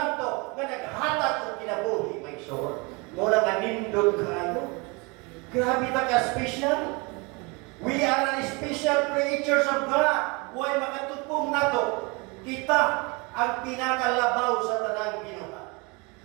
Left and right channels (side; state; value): left; quieter; 28.6 dB